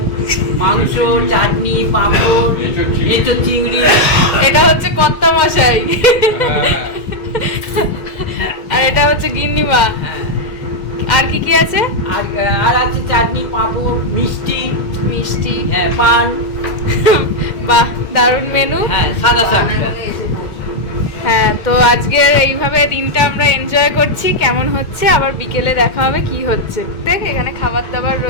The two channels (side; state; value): right; late; 2.2 ms